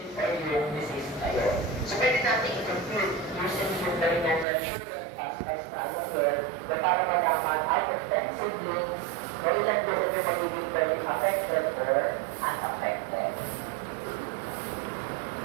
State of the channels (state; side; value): drops out; left; at 4.5 s